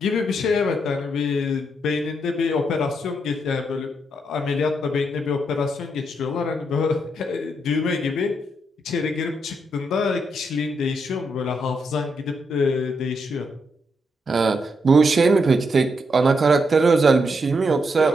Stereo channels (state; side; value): normal; both; correlation 0.80